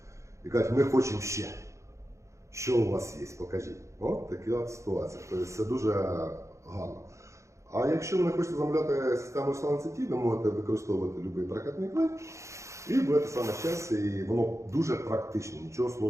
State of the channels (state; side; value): late; left; 0.14 ms